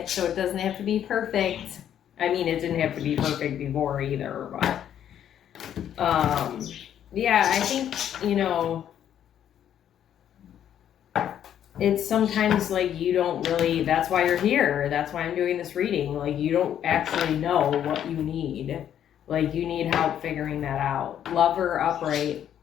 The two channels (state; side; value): quieter; right; 10.1 dB